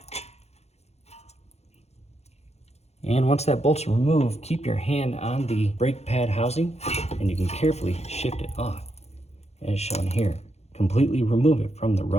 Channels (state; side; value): late; right; 0.31 ms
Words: And once that bolt's removed, keep your hand on the brake pad housing and you can carefully shift it off, as shown here. Completely remove it from the